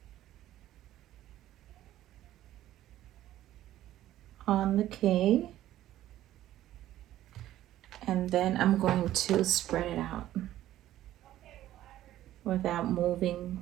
on the K, and then I'm going to spread it out without moving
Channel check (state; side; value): quieter; left; 13.5 dB